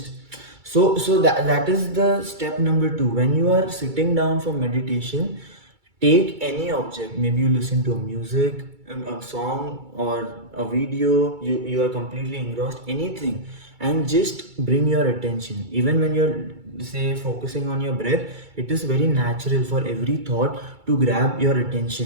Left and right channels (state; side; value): late; left; 2.3 ms